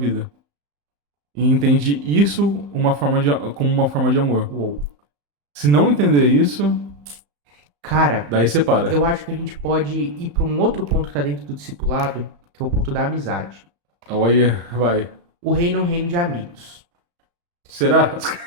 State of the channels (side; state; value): left; late; 35 ms